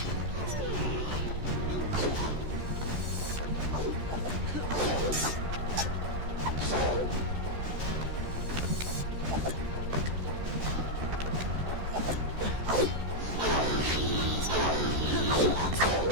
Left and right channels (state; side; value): late; left; 14 ms